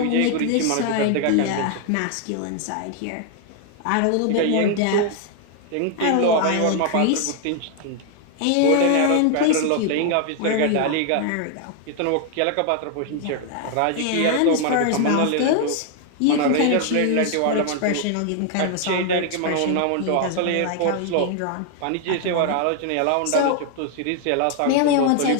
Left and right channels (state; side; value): different; both; correlation 0.00